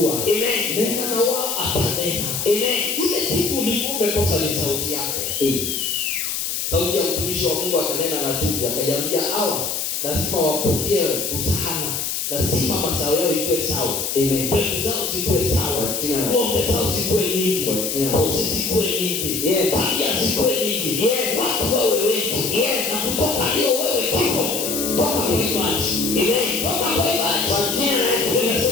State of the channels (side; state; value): left; noise; hiss, 2 dB below the sound